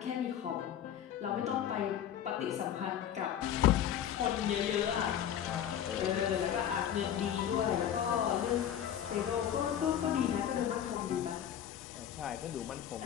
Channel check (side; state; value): right; quieter; 9.9 dB